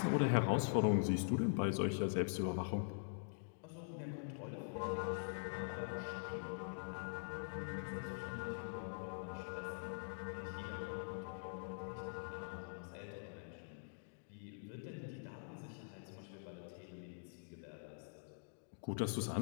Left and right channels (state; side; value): silent; right; digital silence